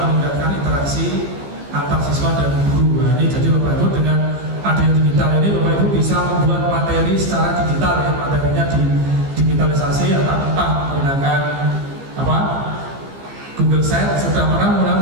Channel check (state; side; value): late; left; 15 ms